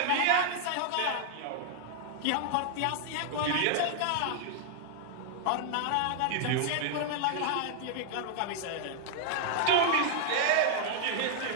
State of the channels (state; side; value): different; both; correlation 0.00